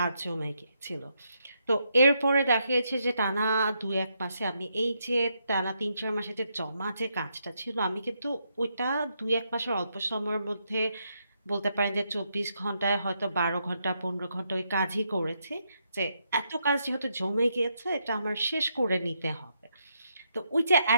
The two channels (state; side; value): inverted; both; correlation -0.79